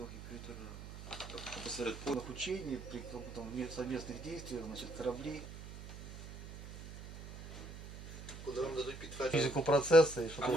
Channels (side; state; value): right; noise; hum, 12 dB below the sound